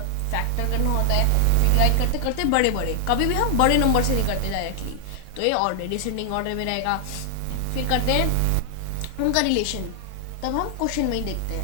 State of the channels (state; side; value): different; both; correlation 0.00